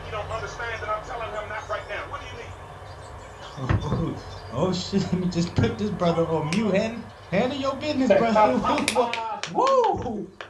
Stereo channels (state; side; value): identical; both; correlation 1.00